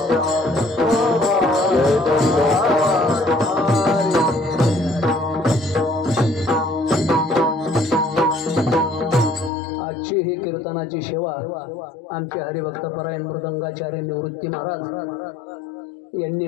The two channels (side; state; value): right; drops out; at 9.5 s